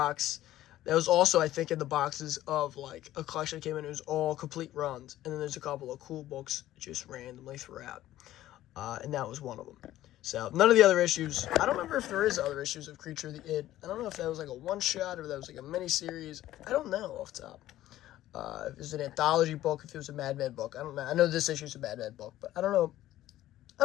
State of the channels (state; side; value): quieter; right; 14.1 dB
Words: That was also, I think, in the boxes of, like, a collection that came in. It was all complete runs. And then there's a couple of cool books just randomly throughout. And that was one of them. So, none of the other issues. I don't remember if there is other issues of Creature of the Id. I don't know if that was, like, a one-shot or if that was, like, a mini-series. I don't know off the top. If it was an anthology book, if it was a Madman book. I don't know. I know this issue is a Madman book, but I don't know.